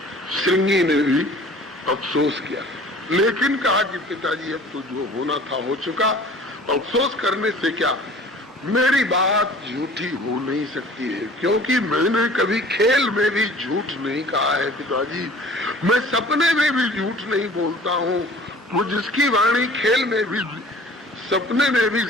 श्रृंगी ने भी अफसोस किया, लेकिन कहा कि पिताजी अब तो जो होना था हो चुका, अफसोस करने से क्या, मेरी बात झूठी हो नहीं सकती है, क्योंकि मैंने कभी खेल में भी झूठ नहीं कहा है पिताजी। मैं सपने में भी झूठ नहीं बोलता हूँ। वो जिसकी वाणी खेल में भी सपने में भी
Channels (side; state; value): both; normal; correlation 0.47